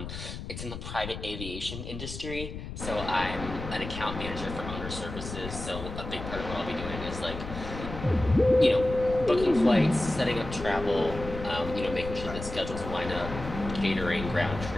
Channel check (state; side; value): noise; left; rumble, 9 dB below the sound